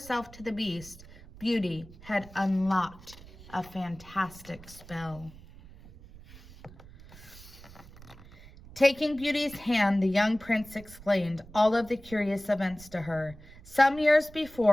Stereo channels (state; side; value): noise; right; rumble, 19 dB below the sound